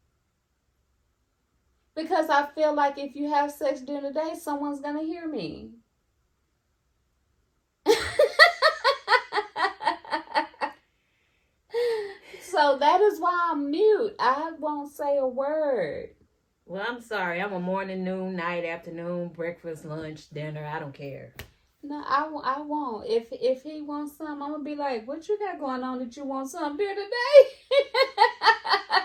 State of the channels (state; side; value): identical; both; correlation 1.00